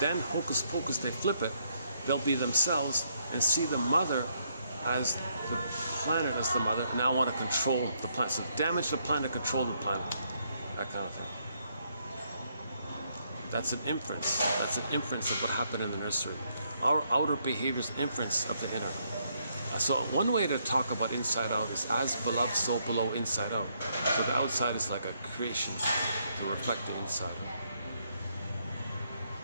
hocus pocus, they flip it. They'll be themselves and see the mother as the planet as the mother. Now I want to control the planet. So damage the planet, control the planet. That kind of thing. That's an inference. That's an inference of what happened in the nursery. Our outer behavior is inference of the inner. So one way to talk about inside out is as beloved, so below, inside out. So the outside is like a creation to reflect the inside.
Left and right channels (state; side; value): inverted; both; correlation -0.73